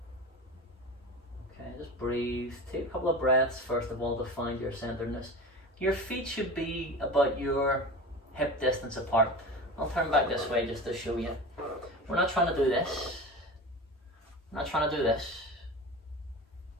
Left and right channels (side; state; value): both; normal; correlation 0.31